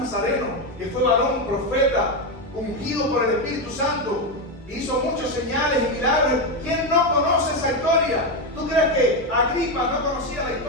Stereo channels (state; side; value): normal; both; correlation 0.09